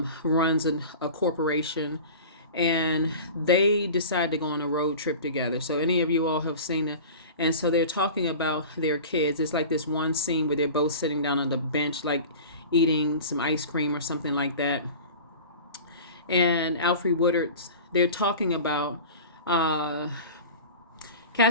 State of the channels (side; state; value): both; inverted; correlation -0.37